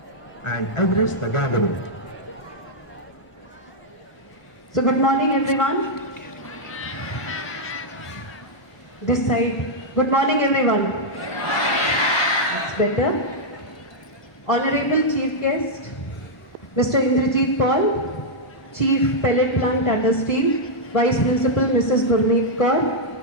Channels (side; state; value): right; late; 1.1 ms